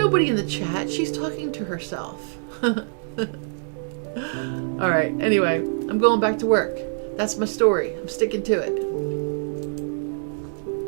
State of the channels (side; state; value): left; silent; digital silence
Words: in the chat. She's talking to herself. Alright, anyway, I'm going back to work. That's my story. I'm sticking to it.